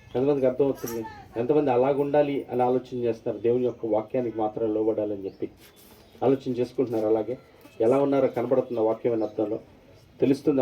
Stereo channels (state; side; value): identical; both; correlation 1.00